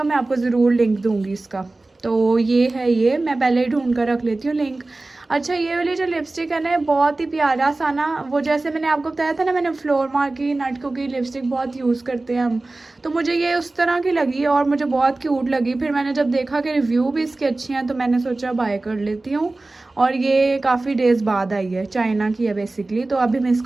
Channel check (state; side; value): quieter; left; 3.1 dB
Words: मैं आपको ज़रूर लिंक दूँगी इसका। तो ये है, ये मैं पहले ही ढूंढ कर रख लेती हूँ लिंक। अच्छा, ये वाली जो लिपस्टिक है ना बहुत ही प्यारा सा ना, वो जैसे मैंने आपको बताया था ना, मैंने फ्लोर मार की नटको की लिपस्टिक बहुत यूज़ करते हैं हम, तो मुझे ये उस तरह की लगी और मुझे बहुत क्यूट लगी। फिर मैंने जब देखा कि रिव्यू भी इसके अच्छे हैं तो मैंने सोचा बाय कर लेती हूँ। और ये काफ़ी डेज़ बाद आई है, चाइना की है बेसिकली। तो अभी हम